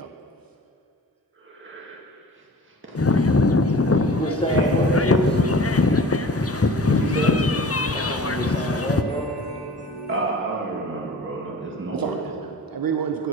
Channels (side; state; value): both; normal; correlation 0.42